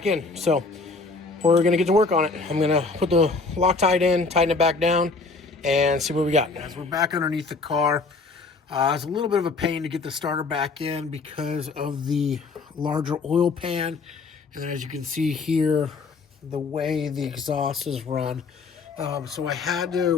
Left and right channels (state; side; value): quieter; right; 4.0 dB